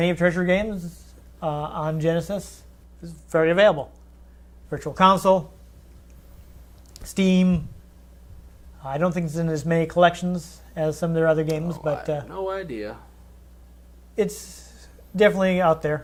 of Treasure games on Genesis, is very available. Virtual Console, Steam. I don't think it's in as many collections as some of their other games, but I have no idea. it's definitely out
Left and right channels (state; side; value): identical; both; correlation 1.00